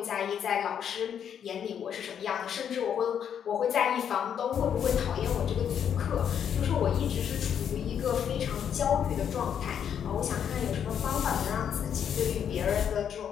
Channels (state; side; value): quieter; right; 8.5 dB